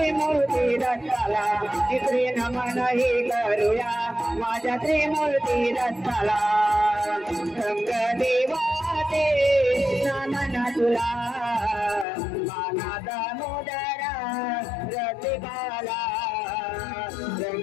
दत्ताला। तिसरे नमन ही करूया माझ्या त्रिमूर्ती दत्ताला। रंग देवाचे नमन तुला मानाचा मुदरा रसिकाला।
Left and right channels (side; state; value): right; drops out; at 12.1 s